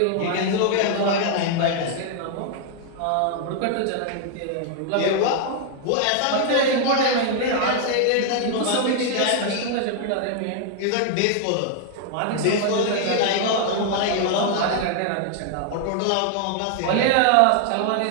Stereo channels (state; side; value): different; both; correlation 0.00